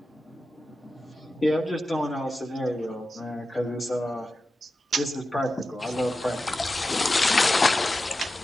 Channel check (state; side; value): normal; both; correlation 0.92